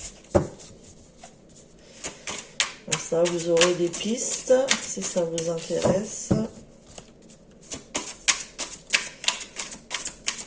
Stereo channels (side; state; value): both; identical; correlation 1.00